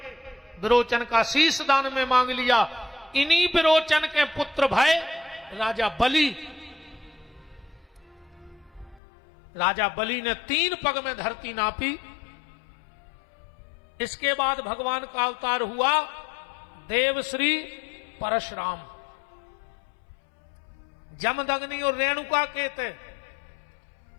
विरोचन का शीश दान में मांग लिया। इन्हीं विरोचन के पुत्र भय राजा बलि, राजा बलि ने 3 पग में धरती नापी। इसके बाद भगवान का अवतार हुआ देवश्री परशुराम। जमदग्नि और रेणुका के थे।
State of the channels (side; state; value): right; drops out; at 9.0 s